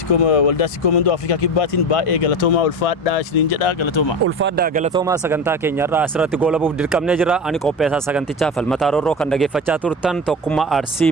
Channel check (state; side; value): normal; both; correlation 0.25